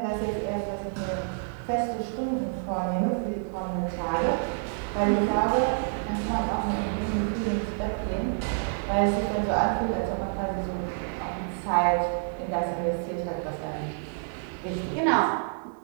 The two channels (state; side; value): silent; left; 59 dB below the other